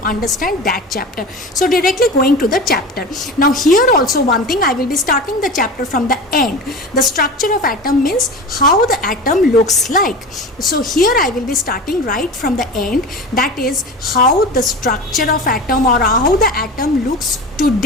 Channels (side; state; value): both; normal; correlation 0.31